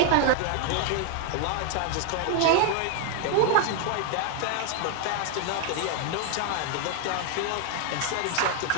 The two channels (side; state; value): both; different; correlation 0.00